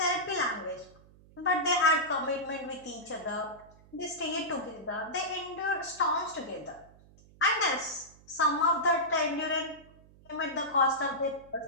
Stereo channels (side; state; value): right; noise; hum, 25 dB below the sound